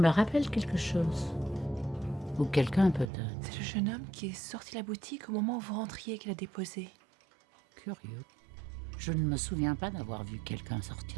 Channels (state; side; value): drops out; left; at 3.1 s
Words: rappelle quelque chose. Ou quelqu'un peut-être. C'est le jeune homme qui est sorti de la boutique au moment où vous rentriez et qui l'a déposé. Curieux. Je ne me souviens pas d'avoir vu quelqu'un